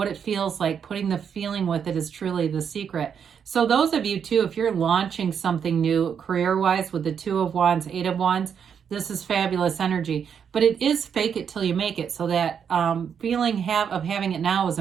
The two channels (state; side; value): quieter; left; 7.5 dB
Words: it feels like. Putting the feeling with it is truly the secret. So those of you too, if you're launching something new career-wise with the 2 of Wands, 8 of Wands, this is fabulous energy. But it is fake it till you make it. So that feeling of having it now is